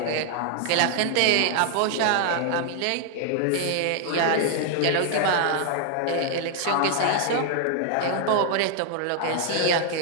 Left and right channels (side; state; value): both; different; correlation 0.00